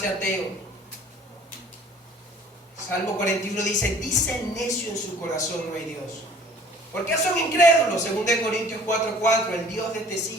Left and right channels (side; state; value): both; normal; correlation 0.51